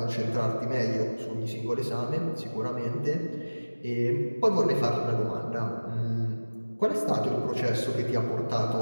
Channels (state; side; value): inverted; both; correlation -1.00